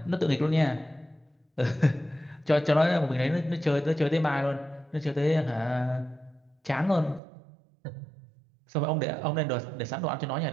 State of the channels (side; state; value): left; drops out; at 7.2 s